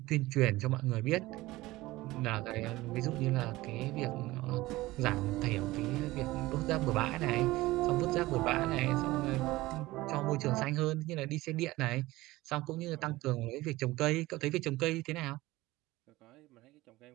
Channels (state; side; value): quieter; left; 18.8 dB